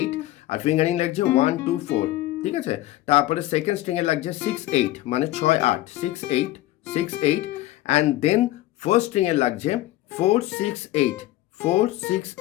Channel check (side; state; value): right; quieter; 15.9 dB